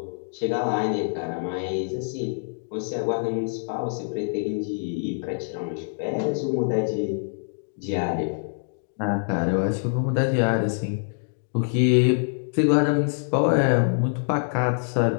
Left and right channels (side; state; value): right; silent; digital silence